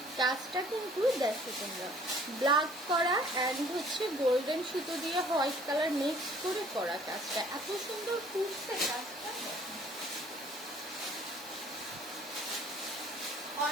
কাজটা কিন্তু দেখো তোমরা ব্ল্যাক করা অ্যান্ড হচ্ছে গোল্ডেন সুতো দিয়ে হোয়াইট কালার মিক্স করে করা। কাজটা এত সুন্দর ফুটছে কাজটা।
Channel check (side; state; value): both; normal; correlation 0.56